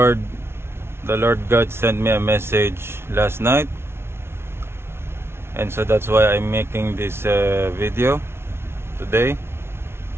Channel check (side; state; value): left; late; 0.12 ms